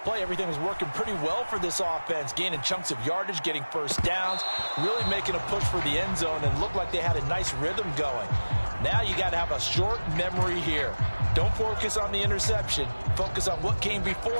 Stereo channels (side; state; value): both; inverted; correlation -1.00